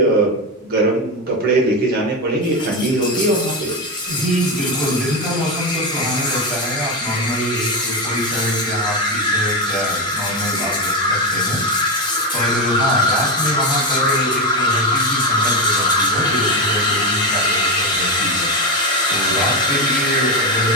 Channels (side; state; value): both; normal; correlation 0.12